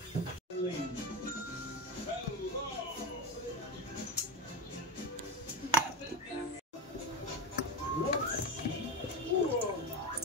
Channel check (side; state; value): both; normal; correlation 0.19